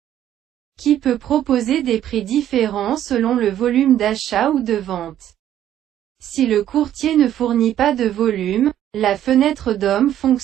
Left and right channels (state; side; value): quieter; left; 11.4 dB